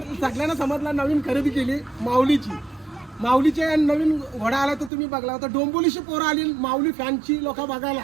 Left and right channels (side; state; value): left; drops out; at 4.9 s